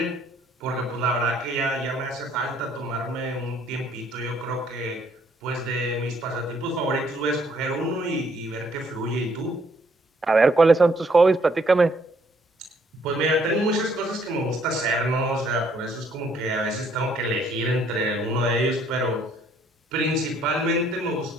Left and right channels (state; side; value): normal; both; correlation 0.66